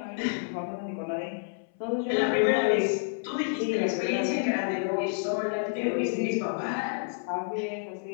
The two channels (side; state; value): right; silent; 59 dB below the other